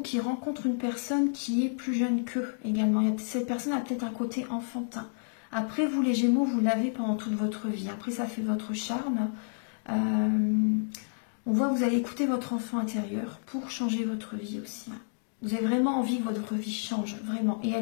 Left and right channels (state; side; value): silent; right; digital silence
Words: qui rencontrent une personne qui est plus jeune qu'eux également. Cette personne a peut-être un côté enfantin. Après, vous les Gémeaux, vous l'avez pendant toute votre vie. Après, ça fait votre charme. On voit que vous allez écouter votre enfant intérieur pour changer votre vie aussi. Hein. Vous avez vraiment envie que votre vie change, vraiment. Et